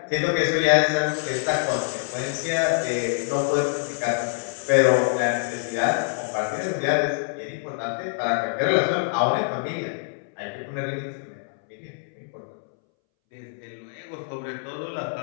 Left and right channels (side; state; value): right; silent; 62 dB below the other